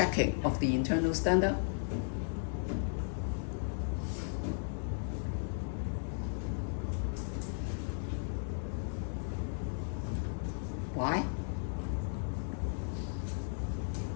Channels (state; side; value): silent; right; digital silence